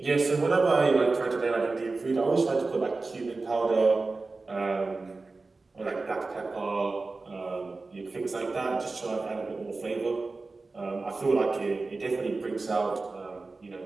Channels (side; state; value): left; quieter; 3.7 dB